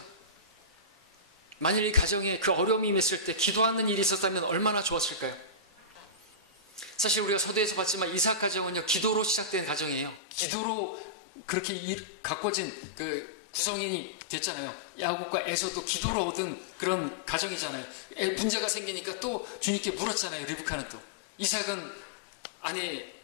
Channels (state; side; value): drops out; right; at 10.2 s